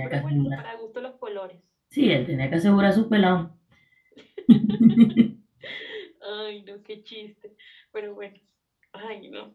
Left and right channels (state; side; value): identical; both; correlation 1.00